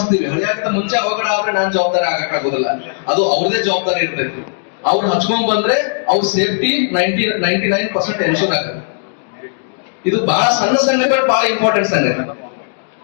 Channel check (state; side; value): silent; right; digital silence